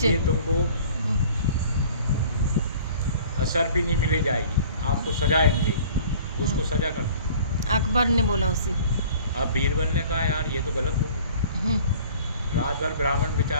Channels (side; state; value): both; inverted; correlation -0.49